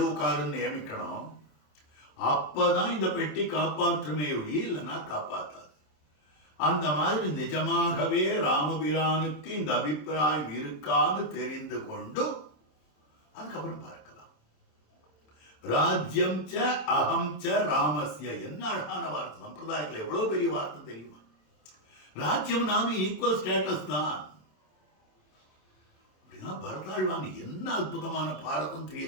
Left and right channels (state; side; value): late; right; 27 ms